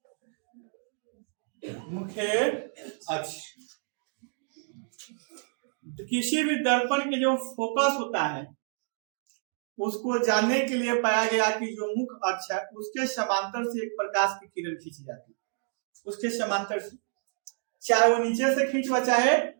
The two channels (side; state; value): left; silent; 57 dB below the other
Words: मुख्य अक्ष। तो किसी भी दर्पण के जो फोकस होता है उसको जानने के लिए पाया गया कि जो मुख्य अक्ष है उसके समांतर से एक प्रकाश की किरण खींची जाती है, उसके समांतर से, चाहे वो नीचे से खींचवा चाहे